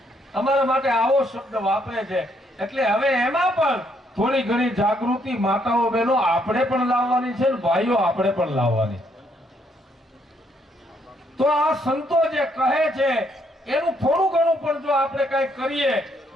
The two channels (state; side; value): normal; both; correlation 0.71